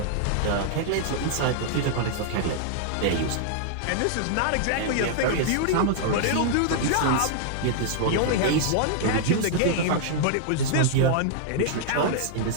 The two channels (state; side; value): different; both; correlation -0.01